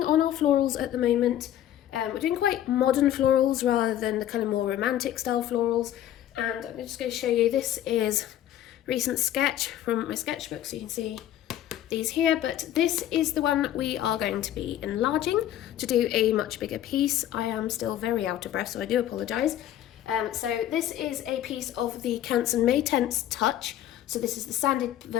on our florals at the moment. We're doing quite modern florals rather than the kind of more romantic style florals, and I'm just going to show you, this is a recent sketch from my sketchbook, so you can see these here, but this is the one we are going to be enlarging to do a much bigger piece. I am still very out of breath, so I do apologise. So this is a piece of the Canson May Tense Touch. So this is the sanded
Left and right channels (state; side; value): quieter; right; 11.9 dB